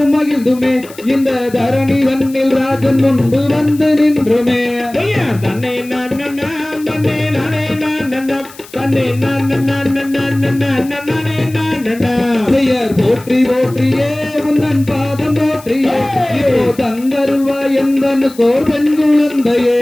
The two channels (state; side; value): noise; left; hiss, 21 dB below the sound